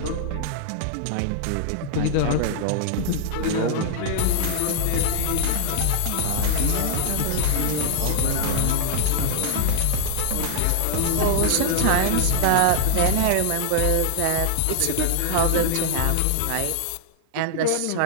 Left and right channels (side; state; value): both; different; correlation 0.00